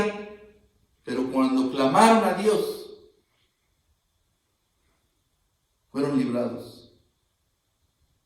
pero cuando clamaron a Dios, fueron librados.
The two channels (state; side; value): identical; both; correlation 1.00